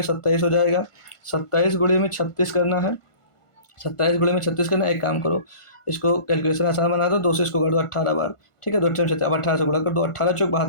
27 हो जाएगा। 27 गुणे में 36 करना है, 27 गुणे में 36 करना। एक काम करो, इसको कैलकुलेशन आसान बना दो, 2 से इसको कर दो 18 बार, ठीक है। 2 अब 18 से गुणा कर दो, 18 चौक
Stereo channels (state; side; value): late; right; 1.5 ms